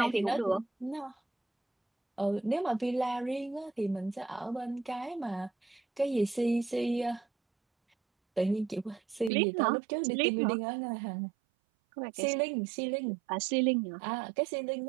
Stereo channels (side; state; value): left; drops out; at 9.3 s